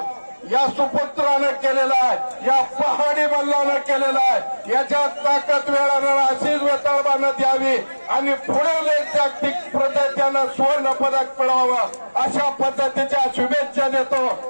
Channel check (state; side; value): inverted; both; correlation -1.00